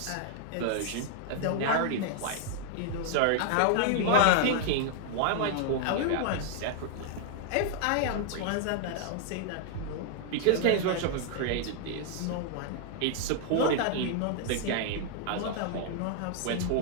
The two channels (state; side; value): different; both; correlation 0.00